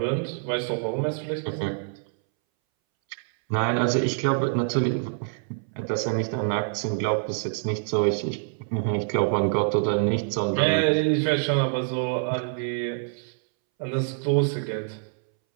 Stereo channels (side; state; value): left; silent; 61 dB below the other